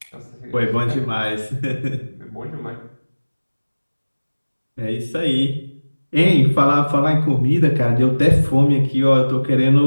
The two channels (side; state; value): both; inverted; correlation -1.00